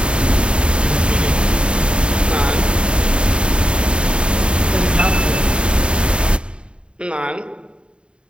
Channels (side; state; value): left; late; 0.054 ms